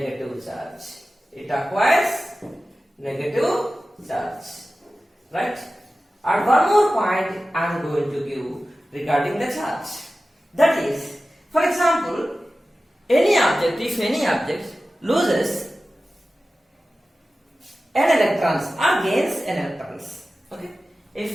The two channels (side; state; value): both; normal; correlation 0.95